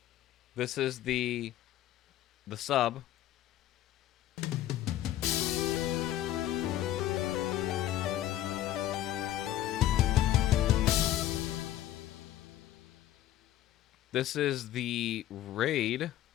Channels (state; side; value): quieter; right; 13.1 dB